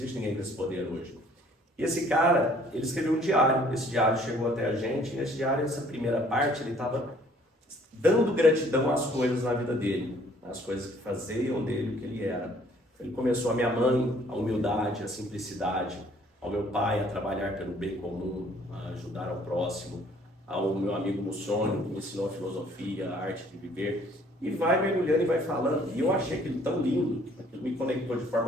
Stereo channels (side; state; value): both; normal; correlation 0.59